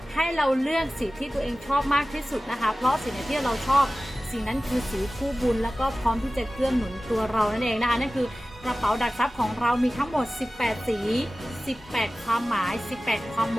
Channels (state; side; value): normal; both; correlation 0.96